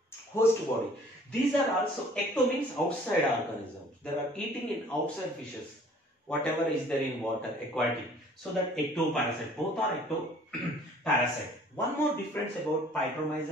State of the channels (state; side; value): normal; both; correlation 0.54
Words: Host body. These are also, ecto means outside organisms. They are eating in outside fishes. Whatever is there in water, aquatic. So that ectoparasite. Both are ectoparasite. One more difference about